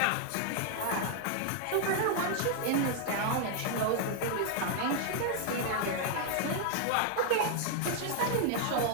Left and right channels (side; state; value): both; different; correlation 0.00